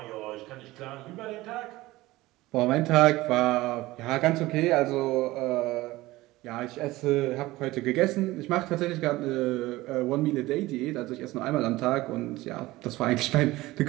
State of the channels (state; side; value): quieter; left; 18.6 dB